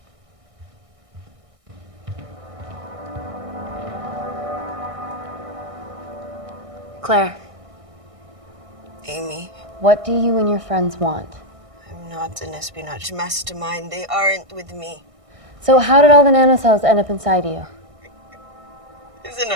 Claire, Amy, what do you and your friends want? I'm not an espionage mastermind. They aren't with me. So how did all the nanocells end up inside you? Is it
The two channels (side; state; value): left; late; 1.6 ms